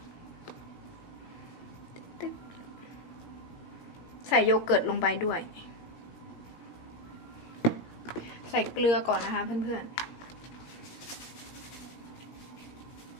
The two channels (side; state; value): right; late; 17 ms